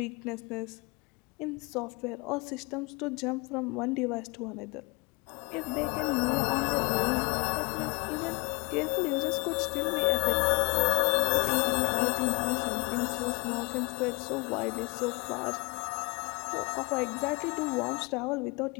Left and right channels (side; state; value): right; quieter; 29.2 dB